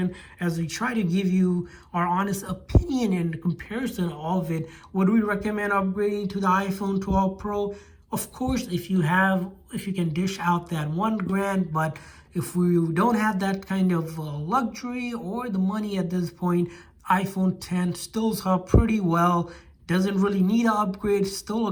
as we try to give you our honest opinion and comparison of it. Would we recommend upgrading to the iPhone 12 Pro? Of course, if you can dish out that $1,000, but if we don't have that kind of luxury or the money at this point, iPhone 10 stills up pretty well. Doesn't really need an upgrade. Still a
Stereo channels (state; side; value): identical; both; correlation 1.00